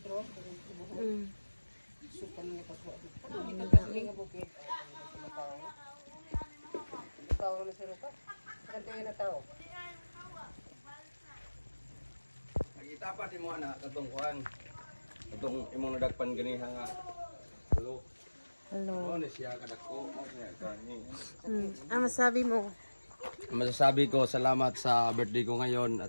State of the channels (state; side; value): inverted; both; correlation -1.00